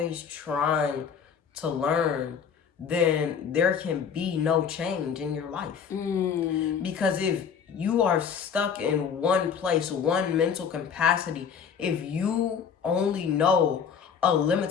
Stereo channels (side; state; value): right; quieter; 7.0 dB